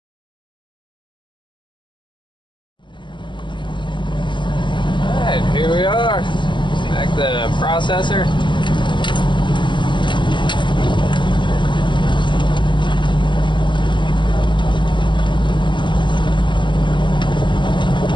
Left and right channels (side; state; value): right; late; 0.23 ms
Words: Alright, here we are. Back to the processor.